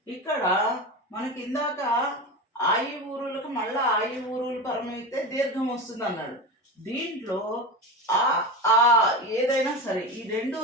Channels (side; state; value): both; normal; correlation 0.24